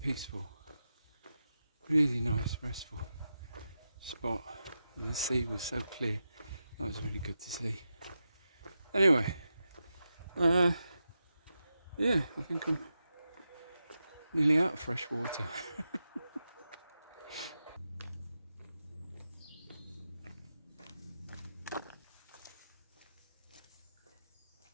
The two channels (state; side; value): inverted; both; correlation -0.89